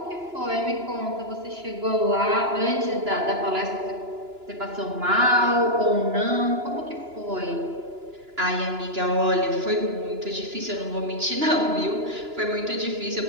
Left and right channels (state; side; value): late; left; 2.9 ms